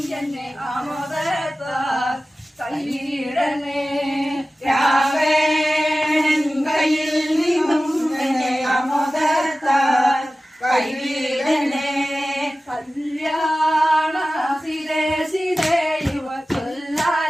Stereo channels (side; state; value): both; normal; correlation 0.96